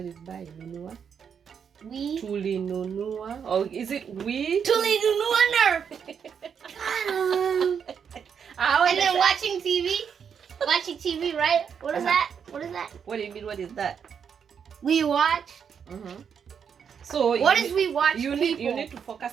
is buy? Nunua. We. Tuli nunua. Or is it we? Tuli nunua nerf. And then watching TV. Watching TV, right? What is that? What is that? What do you mean? What is that? We watch. So What is we watch? you people? need to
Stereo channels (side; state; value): left; quieter; 7.2 dB